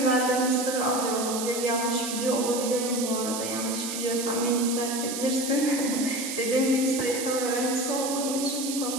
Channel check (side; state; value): right; noise; hiss, 5 dB below the sound